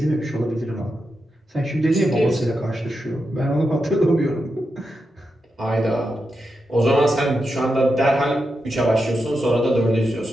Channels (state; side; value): normal; both; correlation 0.87